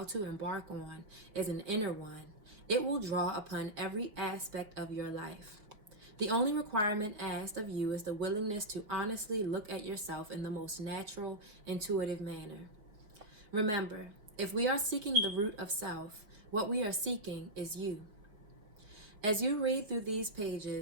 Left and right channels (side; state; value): left; late; 5.3 ms